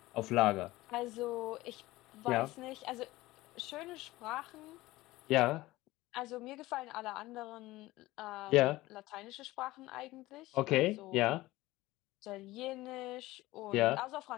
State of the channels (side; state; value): right; quieter; 18.4 dB